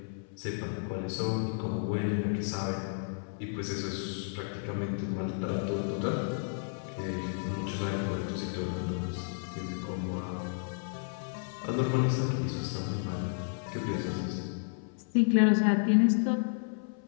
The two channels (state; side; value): silent; right; 56 dB below the other